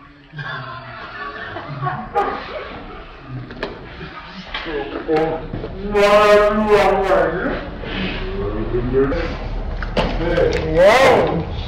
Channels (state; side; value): identical; both; correlation 1.00